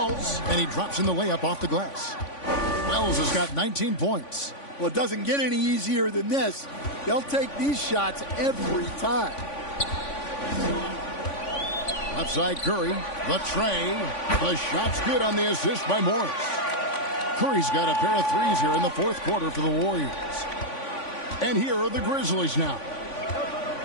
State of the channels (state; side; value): late; right; 3.5 ms